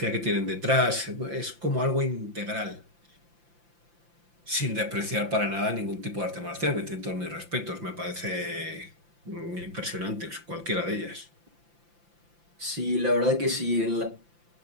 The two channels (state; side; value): late; left; 5.8 ms